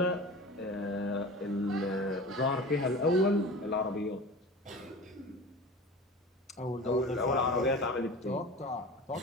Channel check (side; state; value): both; normal; correlation 0.35